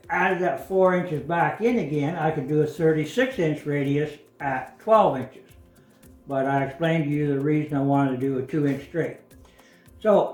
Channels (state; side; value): identical; both; correlation 1.00